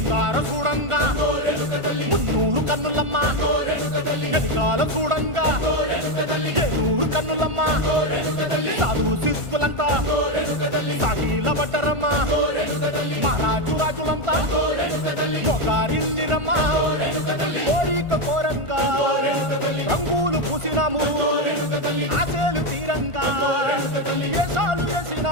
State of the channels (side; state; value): left; late; 1.4 ms